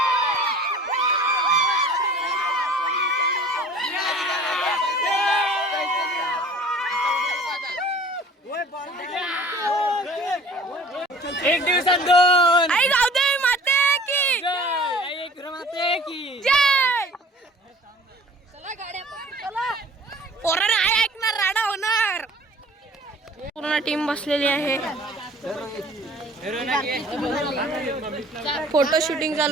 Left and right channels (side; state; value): both; normal; correlation 0.47